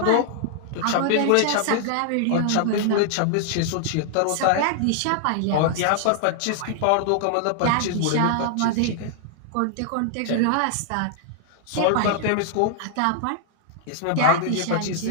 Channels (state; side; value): different; both; correlation 0.00